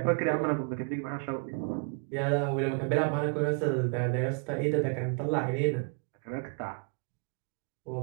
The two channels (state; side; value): quieter; left; 36.7 dB